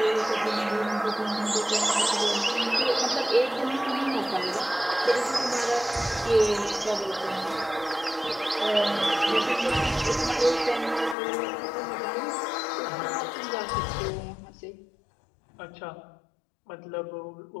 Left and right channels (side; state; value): right; drops out; at 11.2 s